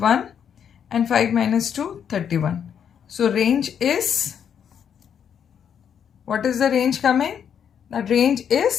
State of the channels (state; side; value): quieter; right; 8.2 dB